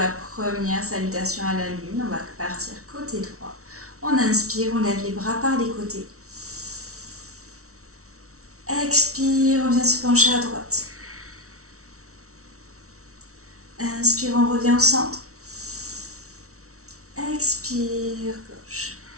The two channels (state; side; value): late; left; 0.64 ms